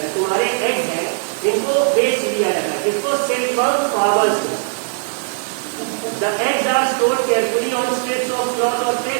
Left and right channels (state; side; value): silent; left; digital silence